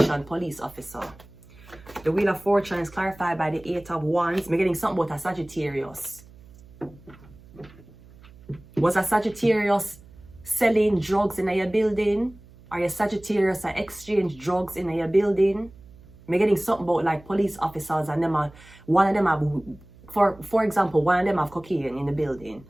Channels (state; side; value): noise; right; hum, 23 dB below the sound